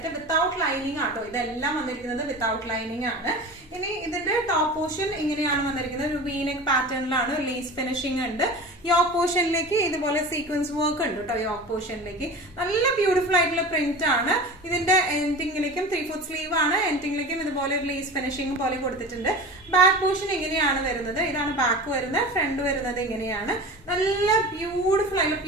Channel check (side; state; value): both; normal; correlation 0.34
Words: വിത്തൗട്ട് ലൈനിങ് ആട്ടോ. ഇതെല്ലാം വന്നിരിക്കുന്നത് വിത്തൗട്ട് ലൈനിങ് ആണ്. ഇനി ഇതിന്റെ ടോപ്പ് പോർഷൻ ഇങ്ങനെയാണ് വന്നിരിക്കുന്നത്. ഒരു വീനെക്ക് പാറ്റേണിലാണ്, ലേസ് ഫിനിഷിംഗ് ഉണ്ട്. യോക്ക് പോർഷനിലേക്ക് ഇതുപോലെ സീക്വൻസ് വർക്ക് ഉണ്ട് കേട്ടോ. യോക്ക് പോർഷനിലേക്ക് നല്ല ബ്യൂട്ടിഫുൾ ആയിട്ടുള്ള പ്രിന്റ് ആണ്. ഇതിന്റെ എൻഡിങ്ങിലേക്കും 3/4 സ്ലീവ് ആണ്. എൻഡിങ്ങിലേക്കും ഇതുപോലെ ഒരു ലേസ് ഫിനിഷിംഗ് പോലെ കൊടുത്തിട്ടുണ്ട്. ബാക്ക് പോർഷൻ ഇങ്ങനെയാണ് വരുന്നത്. ഇതാണ് ബാക്ക് വരുന്നത്. ഫ്രണ്ട് വരുന്നത് ഇങ്ങനെയാണ്. നല്ല ബ്യൂട്ടിഫുൾ ആയിട്ടുള്ള